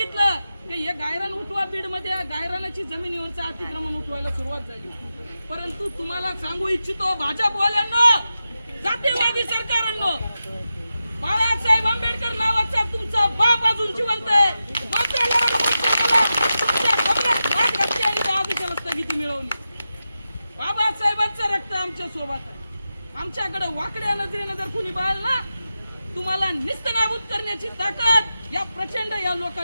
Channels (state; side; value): inverted; both; correlation -0.91